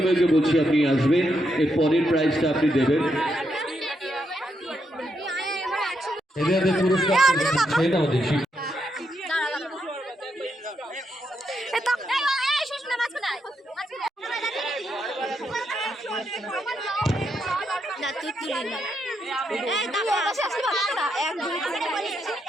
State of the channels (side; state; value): both; normal; correlation 0.80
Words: বলছি আপনি আসবেন, এর পরের প্রাইজটা আপনি দেবেন। এদের পুরস্কার দেখি।